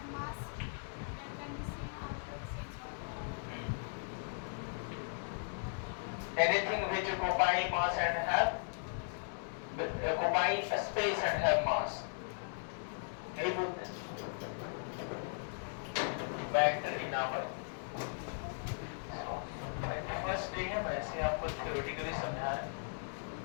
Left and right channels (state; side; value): silent; right; digital silence